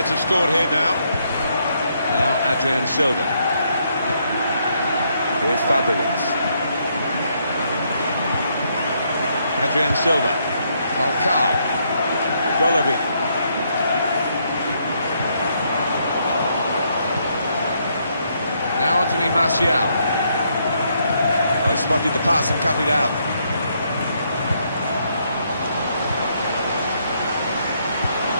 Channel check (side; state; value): both; inverted; correlation -0.74